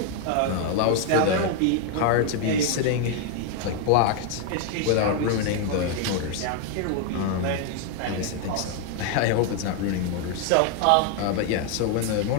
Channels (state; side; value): different; both; correlation 0.01